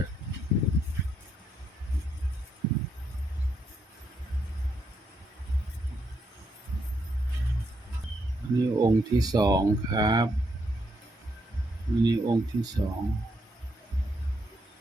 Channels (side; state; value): both; normal; correlation 0.77